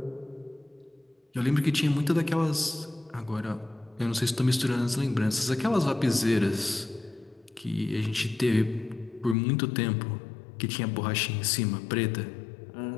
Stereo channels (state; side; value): drops out; right; at 9.3 s